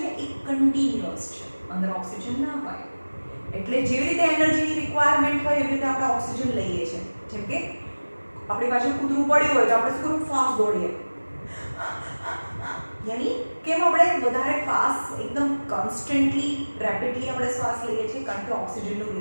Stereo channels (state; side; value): inverted; both; correlation -1.00